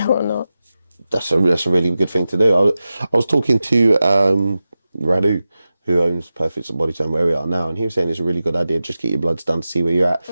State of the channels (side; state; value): both; inverted; correlation -0.94